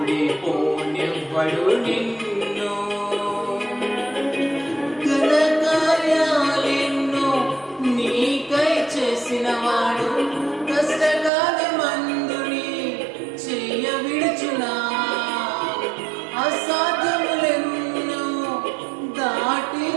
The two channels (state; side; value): drops out; left; at 11.3 s